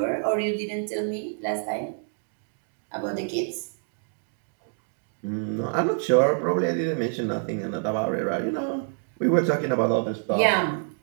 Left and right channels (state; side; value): silent; left; digital silence